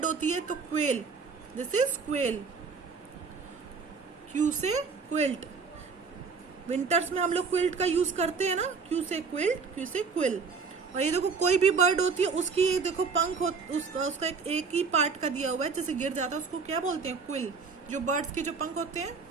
होती है तो quail. This is quail. Q से क्विल्ट। विंटर्स में हम लोग क्विल्ट का यूज करते हैं ना, क्यू से क्विल्ट, क्यू से क्विल। और ये देखो कोई भी बर्ड होती है उसकी ये देखो पंख उसका एक ही पार्ट का दिया हुआ है, जैसे गिर जाता है उसको क्या बोलते हैं? क्विल। जो बर्ड्स के जो पंख होते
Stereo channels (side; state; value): left; quieter; 5.1 dB